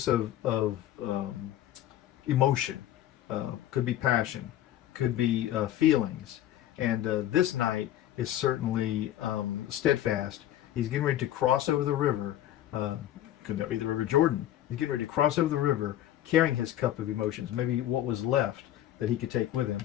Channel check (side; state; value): right; quieter; 12.7 dB